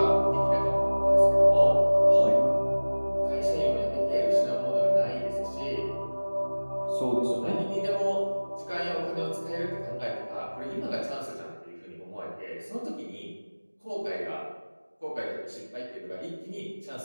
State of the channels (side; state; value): both; inverted; correlation -1.00